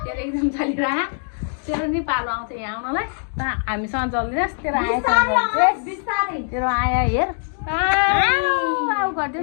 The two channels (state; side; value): silent; right; 60 dB below the other